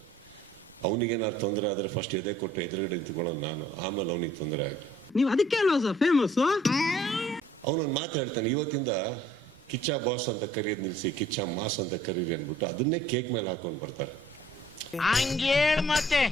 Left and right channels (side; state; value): both; normal; correlation 0.58